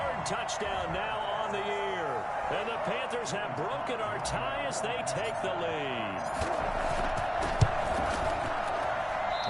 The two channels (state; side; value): identical; both; correlation 1.00